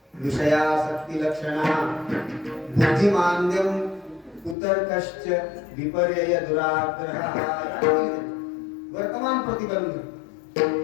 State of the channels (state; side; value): drops out; right; at 4.5 s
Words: विषयासक्ती लक्षणा बुद्धिमांद्यम कुतर्कश्च विपर्यय दुराग्रह. वर्तमान प्रतिबंध.